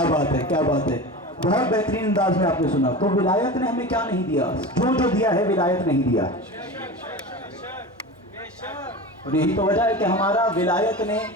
بات ہے, کیا بات ہے. بہت بہترین انداز میں آپ نے سنا. تو ولایت نے ہمیں کیا نہیں دیا؟ جو دیا ہے ولایت نہیں دیا. اور یہی تو وجہ ہے کہ ہمارا ولایت نے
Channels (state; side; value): normal; both; correlation 0.30